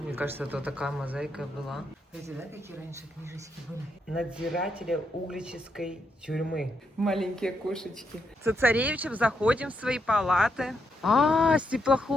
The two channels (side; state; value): both; normal; correlation 0.80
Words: Мне кажется, это такая мозаика была. Знаете, да, какие раньше книжечки были? Надзирателя углической тюрьмы. Маленькие кошечки. С царевичем заходим в свои палаты. С